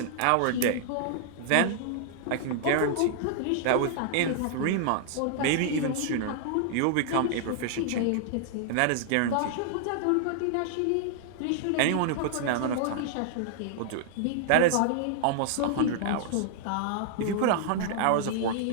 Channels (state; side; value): different; both; correlation -0.01